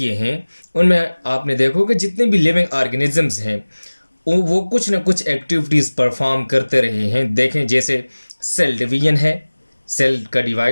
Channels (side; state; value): both; inverted; correlation -1.00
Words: हैं उनमें आपने देखो कि जितने भी लिविंग ऑर्गेनिजम्स हैं वो कुछ ना कुछ एक्टिविटीज़ परफॉर्म करते रहे हैं। देखें, जैसे सेल डिवीजन है, सेल का